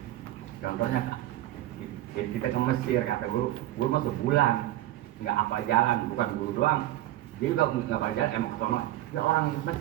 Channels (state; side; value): quieter; left; 14.7 dB